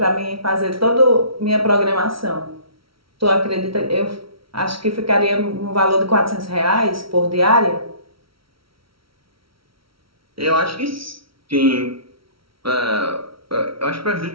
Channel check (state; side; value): late; left; 0.75 ms